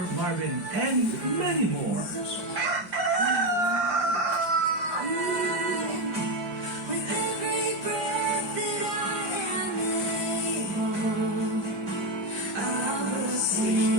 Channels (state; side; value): late; left; 5.8 ms